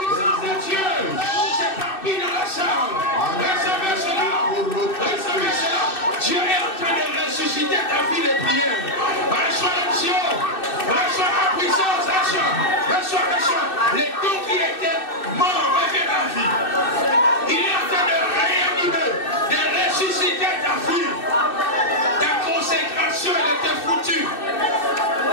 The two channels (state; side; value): late; right; 2.6 ms